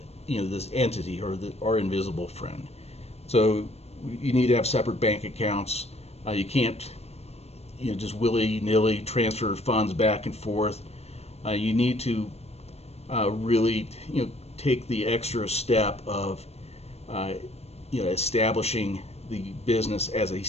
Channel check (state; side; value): late; right; 0.30 ms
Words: this entity or our invisible friend. So you need to have separate bank accounts. You can't, just willy-nilly transfer funds back and forth. You need to really, take the extra step of, establishing the business as a